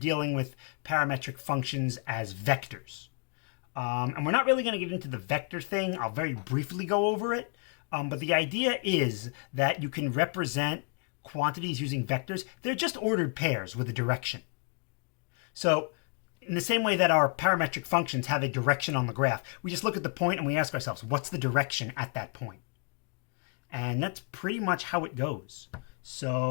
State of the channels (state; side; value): quieter; right; 35.9 dB